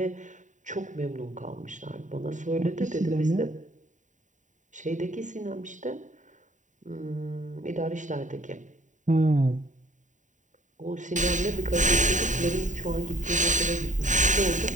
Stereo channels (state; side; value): late; left; 0.36 ms